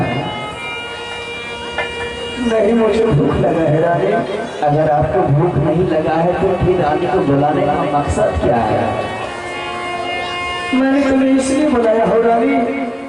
नहीं, मुझे भूख लगा है रानी। अगर आपको भूख नहीं लगा है तो फिर रानी को बुलाने का मकसद क्या है? मैंने तुम्हें इसलिए बुलाया हो रानी,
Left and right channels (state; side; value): identical; both; correlation 1.00